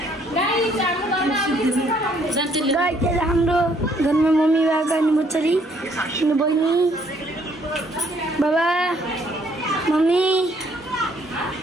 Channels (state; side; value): normal; both; correlation 0.66